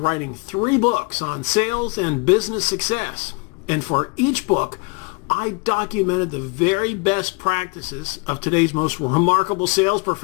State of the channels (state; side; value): quieter; right; 30.6 dB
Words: 3 books on sales and business success. And for each book, I documented the very best practices of today's most remarkable sales